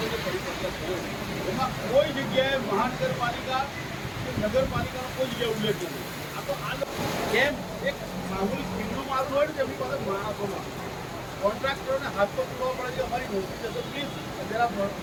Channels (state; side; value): identical; both; correlation 1.00